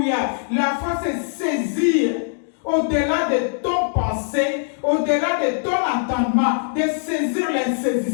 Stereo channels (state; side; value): silent; right; digital silence